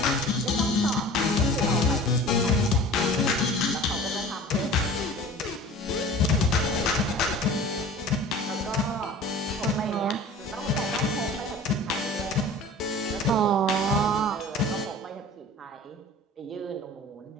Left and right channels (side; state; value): both; normal; correlation 0.42